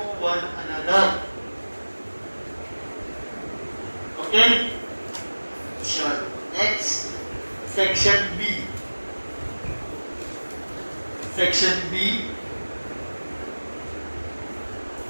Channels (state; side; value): inverted; both; correlation -1.00